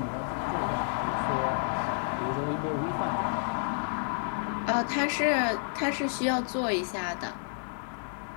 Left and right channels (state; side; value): silent; right; 58 dB below the other